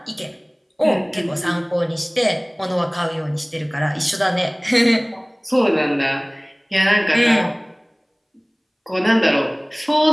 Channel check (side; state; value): both; identical; correlation 1.00